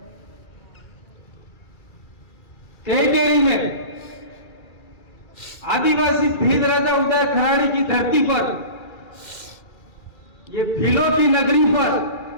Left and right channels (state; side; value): late; right; 2.3 ms